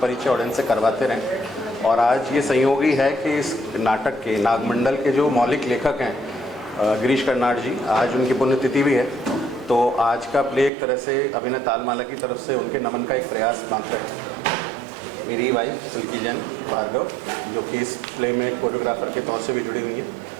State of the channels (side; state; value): left; drops out; at 10.7 s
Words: परिचय ऑडियंस से करवाते रहें। और आज ये संयोगी है कि इस नाटक के नागमंडल के जो मौलिक लेखक हैं गिरीश कर्नाड जी, आज उनकी पुण्यतिथि भी है। तो आज का प्ले एक तरह से अभिनय तालमाला की तरफ से उनके नमन का एक प्रयास मात्र है। मेरी वाइफ सिल्की जैन भार्गव, जो कि इस प्ले में कोरियोग्राफर के तौर से भी जुड़ी हुई हैं।